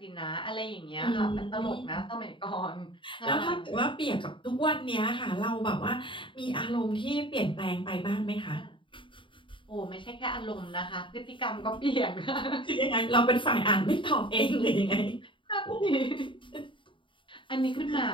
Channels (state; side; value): late; right; 0.24 ms